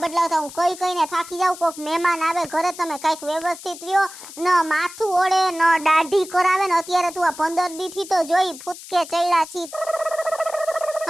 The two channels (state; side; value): noise; left; hiss, 15 dB below the sound